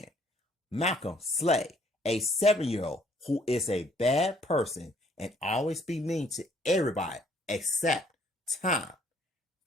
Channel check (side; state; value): both; normal; correlation 0.63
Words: Malcolm Slay, a 7-year-old who is a bad person and always be mean to everybody except Tom.